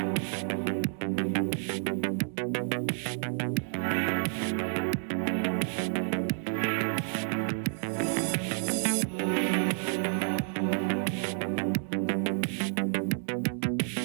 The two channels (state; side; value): silent; left; 58 dB below the other